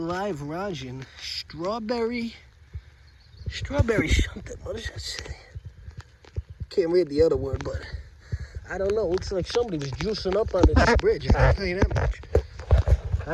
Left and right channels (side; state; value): both; identical; correlation 1.00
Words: live rosin, strawberry something. What does that say? Can't read the other word, but I don't know. Looks like somebody was juicing up under this bridge. I can tell you that much.